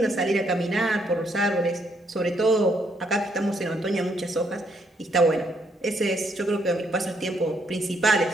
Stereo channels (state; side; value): normal; both; correlation 0.72